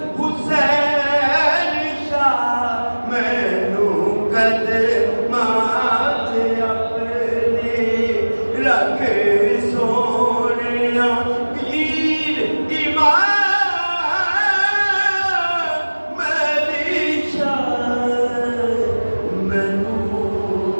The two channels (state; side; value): inverted; both; correlation -1.00